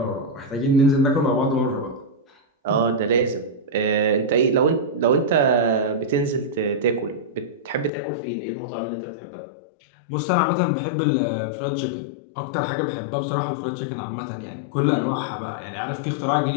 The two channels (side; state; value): right; drops out; at 7.9 s